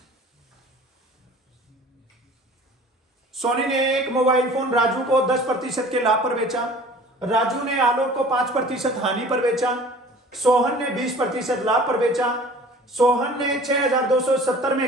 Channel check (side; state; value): both; normal; correlation 0.45